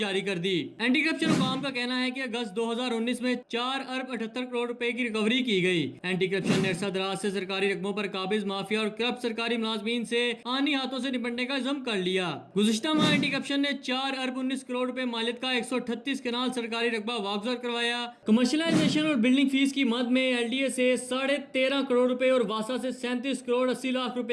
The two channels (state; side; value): identical; both; correlation 1.00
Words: कर दी। एंटी करप्शन हुकाम का कहना है कि अगस्त 2019 में 4 अरब 78 करोड़ रुपए की रिकवरी की गई। एंटी करप्शन ने अरसा दराज से सरकारी रकबों पर काबिज माफिया और करप्ट सरकारी मुलाजमीन से आनी हाथों से निपटने का इल्जाम कर लिया। गुज़िश्ता माह एंटी करप्शन ने 4 अरब 19 करोड़ रुपए मालियत का 138 कनाल सरकारी रकबा वागुजार करवाया। कमर्शलाइजेशन और बिल्डिंग फीस की मद में एलडीए से 13.5 करोड़ रुपए और वासा से 37 करोड़ 80 लाख